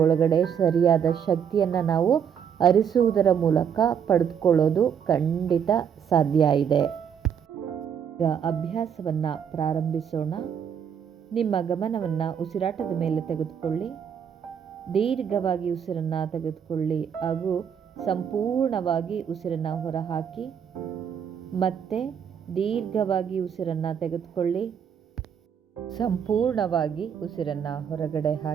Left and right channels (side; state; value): left; quieter; 7.9 dB